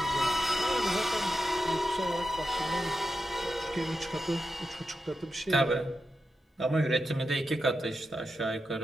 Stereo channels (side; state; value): both; normal; correlation 0.88